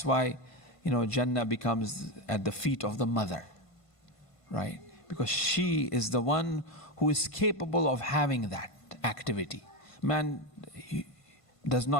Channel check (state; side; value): late; right; 1.5 ms